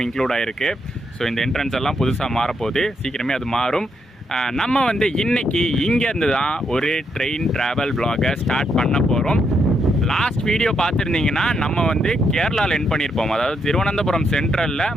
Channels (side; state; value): both; normal; correlation 0.78